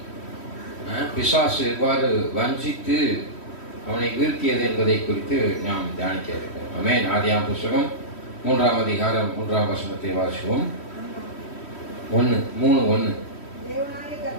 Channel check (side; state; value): right; late; 3.1 ms